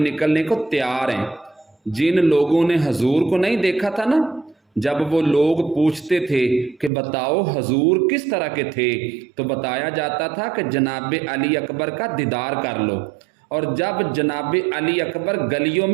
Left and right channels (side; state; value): left; drops out; at 6.9 s